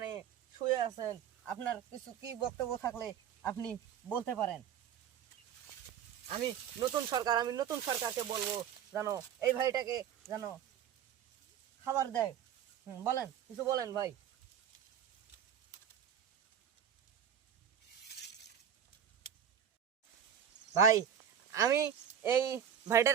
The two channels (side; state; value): left; quieter; 8.9 dB